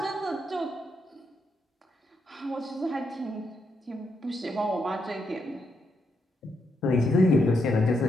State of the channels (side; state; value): both; normal; correlation 0.80